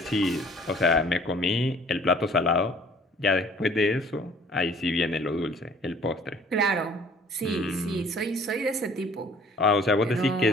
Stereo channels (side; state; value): both; normal; correlation 0.54